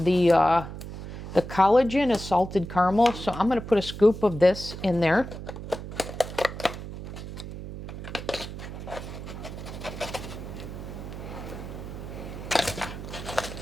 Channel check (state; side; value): noise; right; hum, 10 dB below the sound